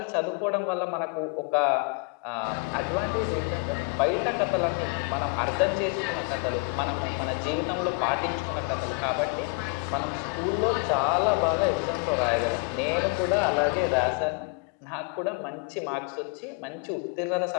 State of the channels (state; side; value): quieter; right; 33.0 dB